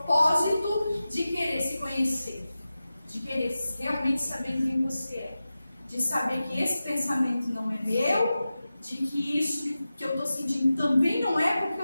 de querer se conhecer, de querer realmente saber quem você é, de saber que esse pensamento não é meu, de que isso que eu estou sentindo também não é porque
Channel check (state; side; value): inverted; both; correlation -0.94